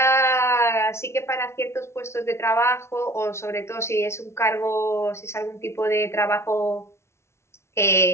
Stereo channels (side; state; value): right; late; 0.13 ms